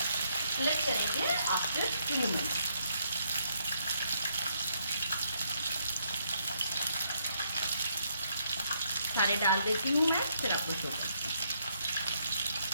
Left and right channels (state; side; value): inverted; both; correlation -0.73